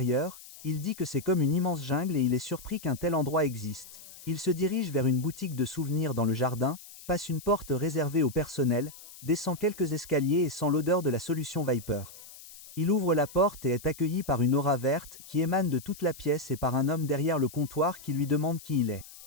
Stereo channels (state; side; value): noise; left; hiss, 18 dB below the sound